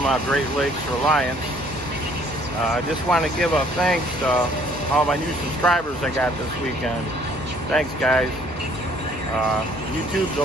Great Lakes Reliance. I just want to give a thanks to all my new subscribers I got this weekend. Thanks guys. YouTube's a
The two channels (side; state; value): both; normal; correlation 0.60